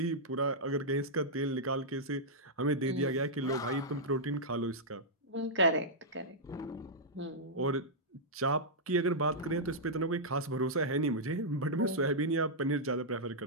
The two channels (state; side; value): normal; both; correlation -0.09